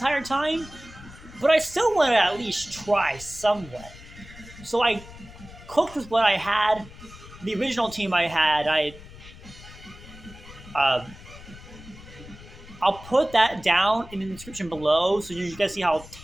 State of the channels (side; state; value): left; noise; rumble, 18 dB below the sound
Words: time, but I still want to at least try somewhat. So I cooked with what I had. The original team I had, I'll put that down in the description below so you guys see how